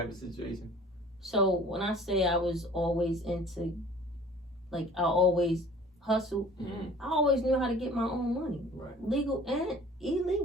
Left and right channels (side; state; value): both; normal; correlation 0.48